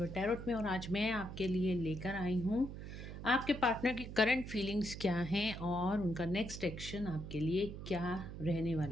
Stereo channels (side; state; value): right; noise; hum, 9 dB below the sound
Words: टैरोट में। और आज मैं आपके लिए लेकर आई हूँ आपके पार्टनर की करंट फीलिंग्स क्या हैं और उनका नेक्स्ट एक्शन आपके लिए क्या रहने